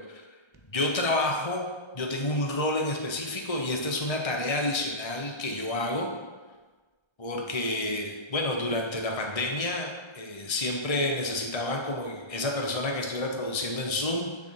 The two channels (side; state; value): right; late; 1.3 ms